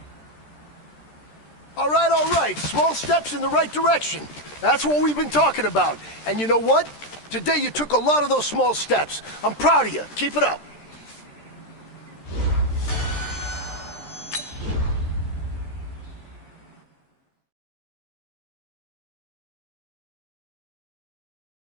All right. Small steps in the right direction. That's what we've been talking about. And you know what? Today you took a lot of those small steps. I'm proud of you. Keep it up.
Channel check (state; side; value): late; right; 13 ms